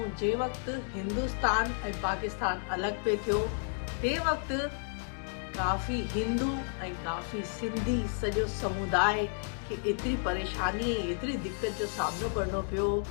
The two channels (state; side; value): silent; right; 56 dB below the other